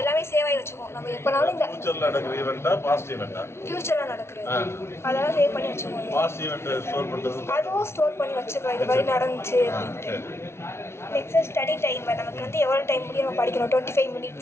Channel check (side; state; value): right; late; 0.12 ms